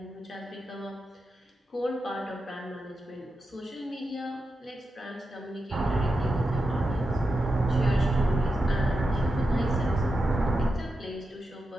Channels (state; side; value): normal; both; correlation 0.89